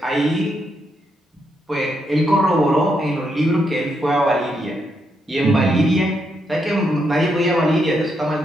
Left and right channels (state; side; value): normal; both; correlation 0.79